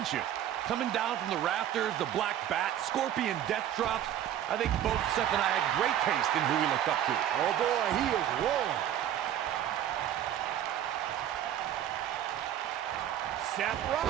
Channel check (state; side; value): quieter; left; 11.0 dB